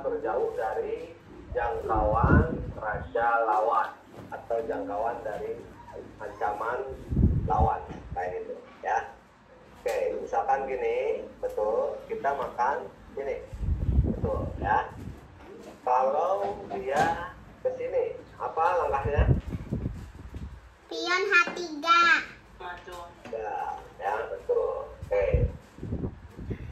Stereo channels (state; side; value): identical; both; correlation 1.00